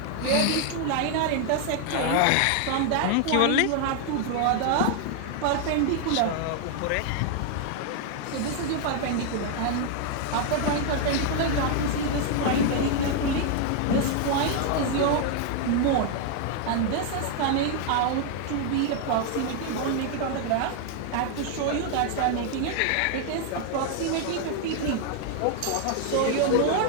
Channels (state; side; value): different; both; correlation 0.00